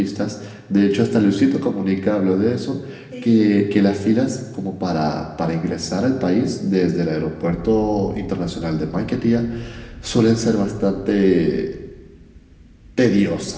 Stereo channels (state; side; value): identical; both; correlation 1.00